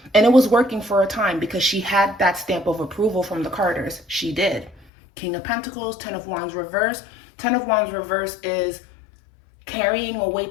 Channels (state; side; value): drops out; right; at 4.9 s